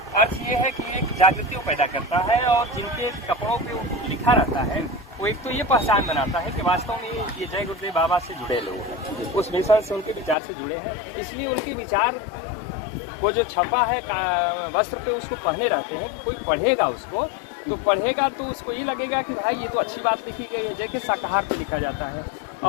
अर्थ ये है कि एक जागृति पैदा करता है, और जिनके कपड़ों पे लिखा रहता है वो एक तो ये पहचान बनाता है कि वास्तव में ये जय गुरुदेव बाबा से जुड़े लोग हैं, उस मिशन से, उनके विचार से जुड़े हैं। इसलिए उनके विचार वो जो छपा है वस्त्र पे, उसको पहने रहते हैं। कोई पढ़ेगा उसको, तो पढ़ेगा तो उसको ये लगेगा कि भाई ये तो अच्छी बात लिखी गई है, जैसे शाकाहार पे लिखा जाता है।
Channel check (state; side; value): drops out; right; at 10.4 s